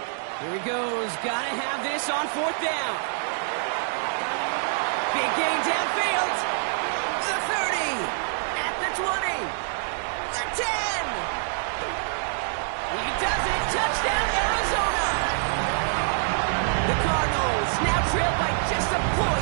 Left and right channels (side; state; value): left; silent; digital silence